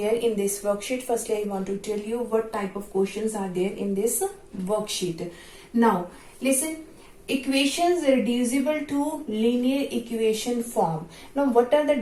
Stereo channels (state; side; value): identical; both; correlation 1.00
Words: in this worksheet? Firstly, I want to tell you what type of questions are there in this worksheet. Now listen, equations reducible to linear equation form. Now what are the